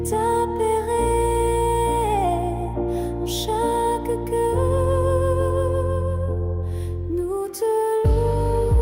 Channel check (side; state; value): both; identical; correlation 1.00